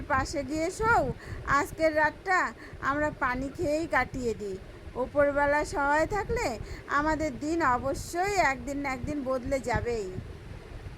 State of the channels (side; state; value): both; identical; correlation 1.00